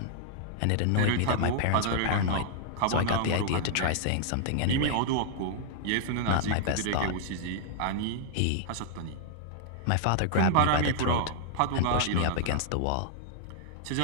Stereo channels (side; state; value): both; different; correlation -0.01